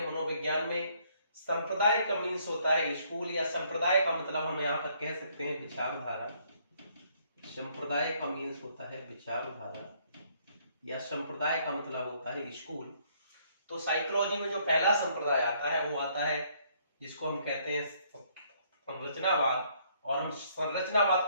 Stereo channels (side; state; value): both; inverted; correlation -0.67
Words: मनोविज्ञान में संप्रदाय का मीन्स होता है स्कूल, या संप्रदाय का मतलब हम यहाँ पर कह सकते हैं विचारधारा। संप्रदाय का मीन्स होता है विचारधारा, या संप्रदाय का मतलब होता है स्कूल। तो साइकोलॉजी में जो पहला संप्रदाय आता है वो आता है जिसको हम कहते हैं संरचनावाद, और हम संरचनावाद